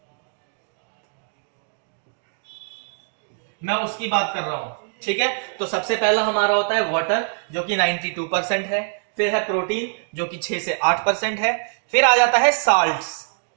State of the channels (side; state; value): left; silent; digital silence